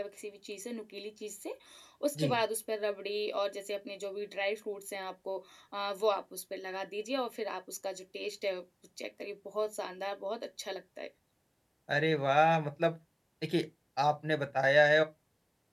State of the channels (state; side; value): identical; both; correlation 1.00